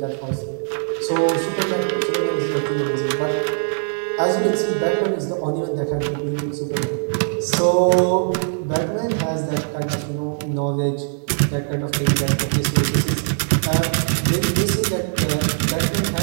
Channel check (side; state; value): left; silent; digital silence